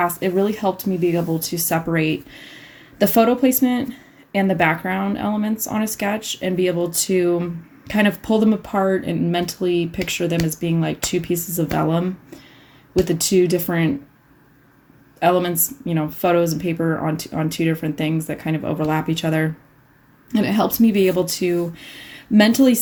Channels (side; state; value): both; identical; correlation 1.00